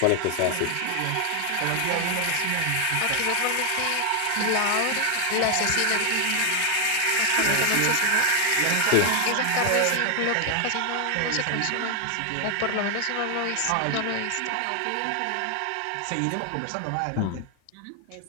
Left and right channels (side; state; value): both; different; correlation 0.00